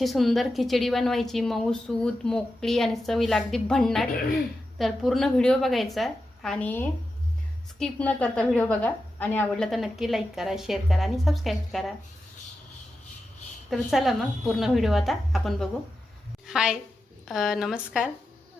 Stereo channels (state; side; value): normal; both; correlation 0.90